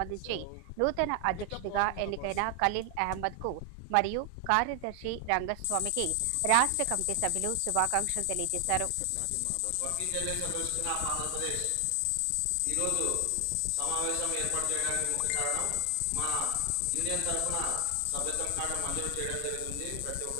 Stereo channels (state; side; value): different; both; correlation 0.00